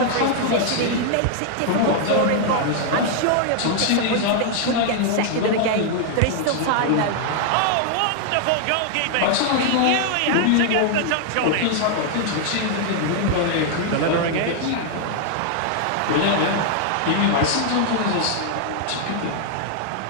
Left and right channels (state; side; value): different; both; correlation 0.00